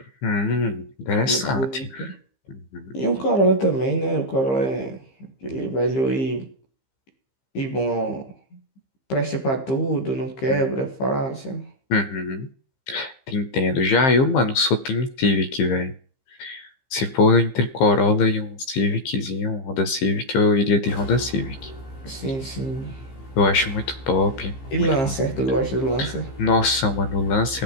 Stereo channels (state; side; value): late; right; 15 ms